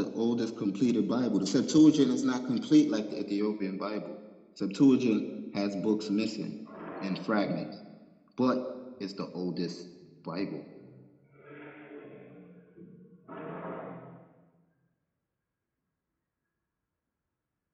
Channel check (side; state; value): both; identical; correlation 1.00